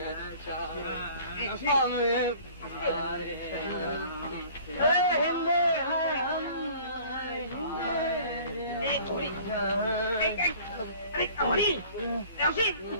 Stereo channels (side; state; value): both; inverted; correlation -0.49